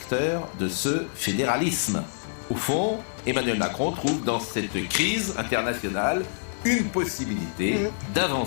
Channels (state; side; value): silent; right; digital silence